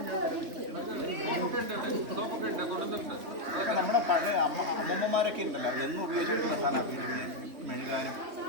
സോപ്പൊക്കെ ഉണ്ട് കൊണ്ടുവന്നിട്ടുണ്ട്. അതൊക്കെ നമ്മുടെ പഴയ അമ്മമ്മമാരൊക്കെ ഉണ്ടല്ലോ എന്നും ഉപയോഗിച്ചിട്ടുള്ള സാധനമാണ് വീടിന് മെഴുകാനും.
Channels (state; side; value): late; left; 3.1 ms